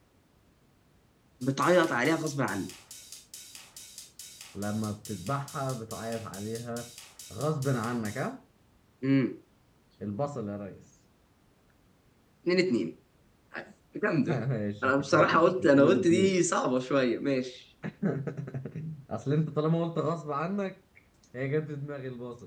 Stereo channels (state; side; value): identical; both; correlation 1.00